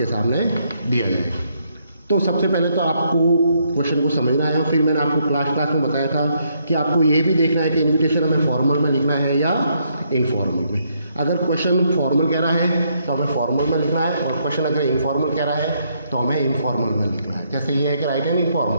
सामने दिया जाएगा। तो सबसे पहले तो आपको क्वेश्चन को समझना है। फिर मैंने आपको क्लास में बताया था कि आपको ये भी देखना है कि इनविटेशन हमें फॉर्मल में लिखना है या इनफॉर्मल में। अगर क्वेश्चन फॉर्मल कह रहा है तो हमें फॉर्मल में लिखना है, और क्वेश्चन अगर इनफॉर्मल कह रहा है तो हमें इनफॉर्मल में लिखना है। जैसे ये है कि राइट एंड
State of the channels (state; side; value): inverted; both; correlation -0.73